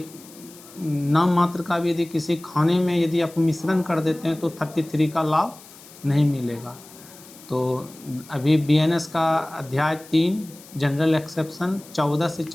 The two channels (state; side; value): noise; left; hiss, 21 dB below the sound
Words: नाम मात्र का भी यदि किसी खाने में यदि आप मिश्रण कर देते हैं तो 33 का लाभ नहीं मिलेगा। तो अभी बीएनएस का अध्याय 3 जनरल एक्सेप्शन 14 से